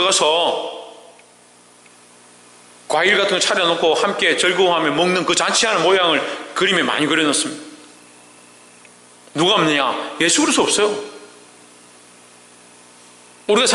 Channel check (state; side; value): identical; both; correlation 1.00